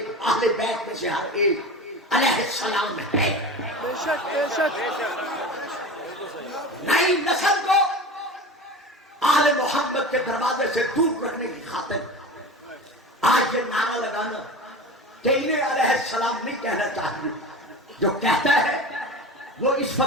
اہل بیت میں سے ہر ایک علیہ السلام ہے۔ بے شک بے شک۔ نئی نسل کو آل محمد کے دروازے سے دور رکھنے کی خاطر آج یہ نعرہ لگانا کہ انہیں علیہ السلام نہیں کہنا چاہیے۔ جو کہتا ہے وہ اس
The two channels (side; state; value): both; normal; correlation 0.32